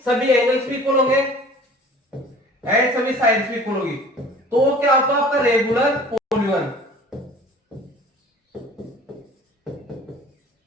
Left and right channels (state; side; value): normal; both; correlation 0.47